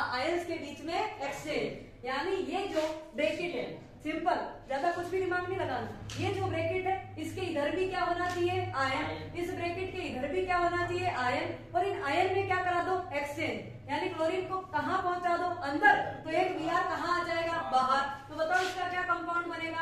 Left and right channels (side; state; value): both; identical; correlation 1.00